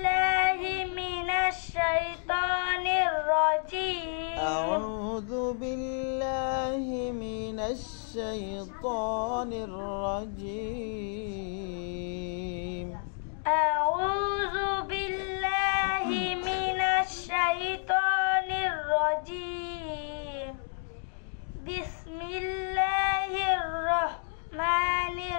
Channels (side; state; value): right; silent; 58 dB below the other